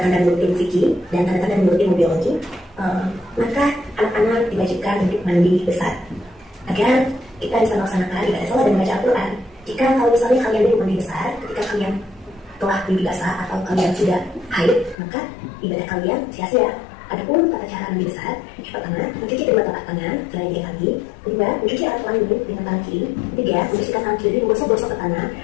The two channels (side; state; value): right; drops out; at 15.0 s